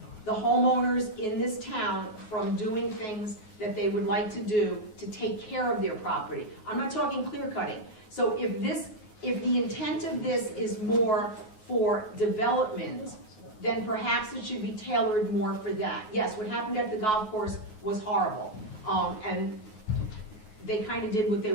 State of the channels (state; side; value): late; right; 9.4 ms